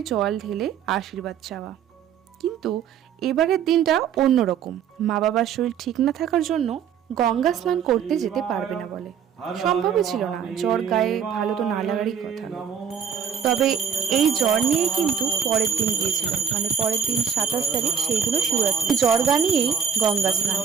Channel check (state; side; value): quieter; left; 7.8 dB